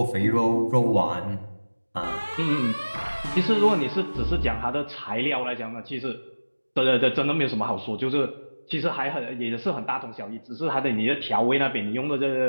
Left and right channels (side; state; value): both; inverted; correlation -1.00